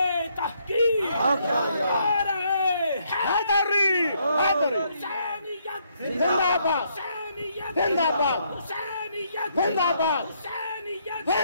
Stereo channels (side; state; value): both; inverted; correlation -0.72